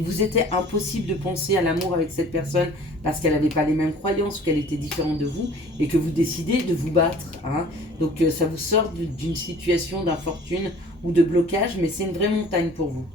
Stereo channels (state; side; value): normal; both; correlation 0.49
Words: vous était impossible de penser à l'amour avec cette personne parce qu'elle n'avait pas les mêmes croyances, qu'elle était différente de vous, et que vous décidez de vous battre, hein. Donc ça vous sort d'une situation d'infortune ou de blocage, mais c'est une vraie montagne pour vous.